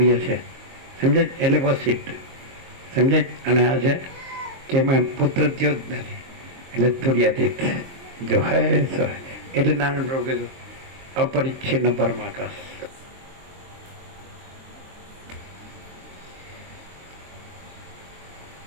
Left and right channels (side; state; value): left; late; 23 ms